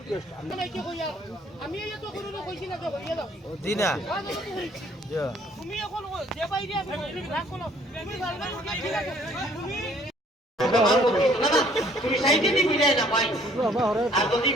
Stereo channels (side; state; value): both; normal; correlation 0.60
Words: আমি এই তো কোনো কইছি না তো হইয়া দাও দিনা তুমি এখন যে বাইরে আমি রাখ কোন তুমি বারবার উঠাই লাগে তুমি সাইডে দি মিলাই না ভাই আর যদি